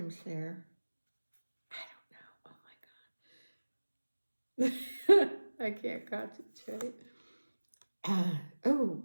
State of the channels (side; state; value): both; inverted; correlation -1.00